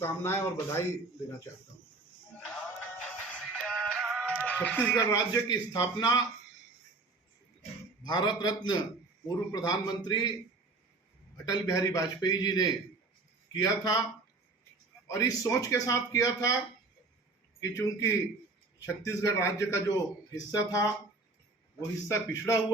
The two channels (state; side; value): quieter; left; 3.5 dB